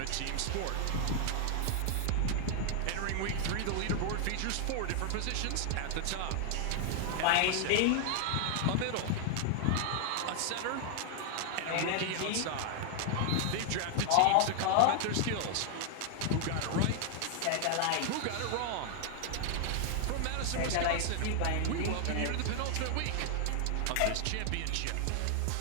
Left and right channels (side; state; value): both; different; correlation 0.00